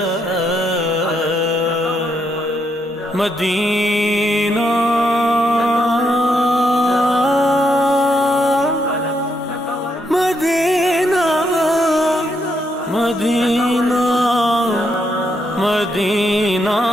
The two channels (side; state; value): both; normal; correlation 0.78